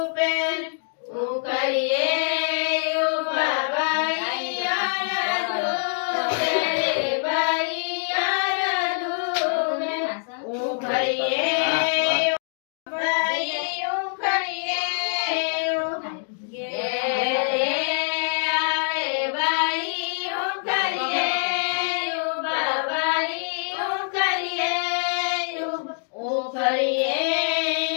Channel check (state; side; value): silent; right; digital silence